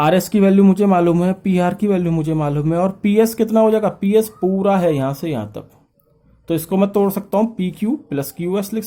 की वैल्यू मुझे मालूम है, PR की वैल्यू मुझे मालूम है, और PS कितना हो जाएगा, PS पूरा है यहां से यहां तक, तो इसको मैं तोड़ सकता हूं, PQ प्लस QS लिख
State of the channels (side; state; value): both; identical; correlation 1.00